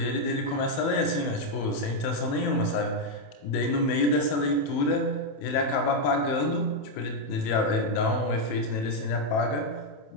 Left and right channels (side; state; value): right; late; 27 ms